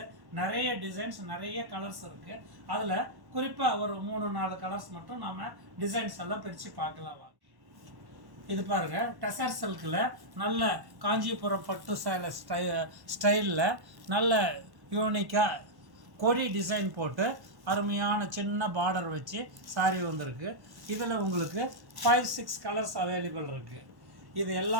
நிறைய டிசைன்ஸ், நிறைய கலர்ஸ் இருக்குது. அதில் குறிப்பாக ஒரு 3-4 கலர்ஸ் மட்டும் நம்ம டிசைன்ஸ் எல்லாம் பிரித்து பார்க்கலாம். இது பாருங்க, டெசர் சில்கில் நல்ல காஞ்சிபுரம் பட்டு சேலை ஸ்டைலில் நல்ல யூனிக்காக கொடி டிசைன் போட்டு அருமையான சின்ன பார்டர் வச்சு சாரி வந்திருக்கு. இதில் உங்களுக்கு 5-6 கலர்ஸ் அவைலபிள் இருக்குது. இது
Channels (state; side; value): late; left; 1.1 ms